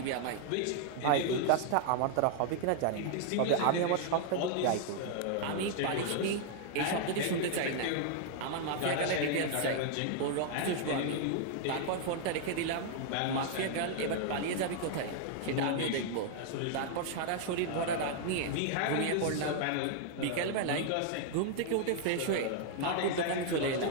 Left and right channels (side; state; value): both; different; correlation 0.00